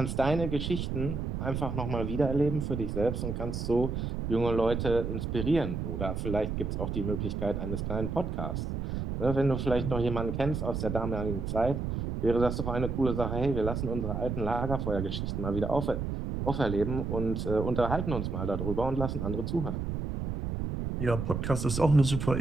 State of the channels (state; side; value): noise; right; rumble, 3 dB below the sound